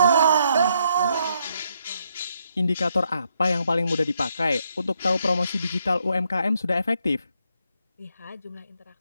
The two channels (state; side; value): inverted; both; correlation -0.75